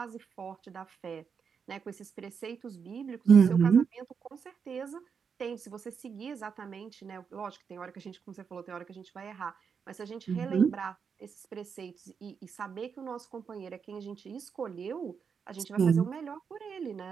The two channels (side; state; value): left; quieter; 6.4 dB